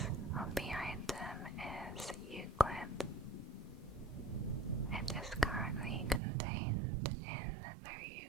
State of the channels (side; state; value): left; drops out; at 6.2 s